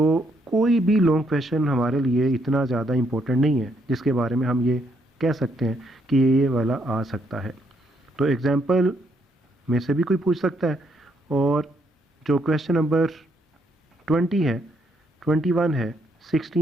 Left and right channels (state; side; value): normal; both; correlation 0.73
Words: कोई भी लॉन्ग क्वेश्चन हमारे लिए इतना ज़्यादा इम्पोर्टेंट नहीं है जिसके बारे में हम ये कह सकते हैं कि ये वाला आ सकता है। तो एग्जाम्पल में से भी कोई पूछ सकता है, और जो क्वेश्चन नंबर 20 है, 21 है,